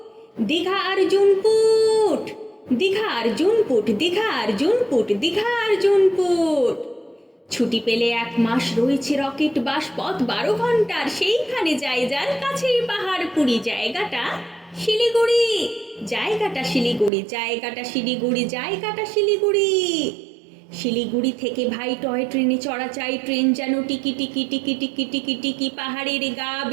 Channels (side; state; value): left; drops out; at 17.1 s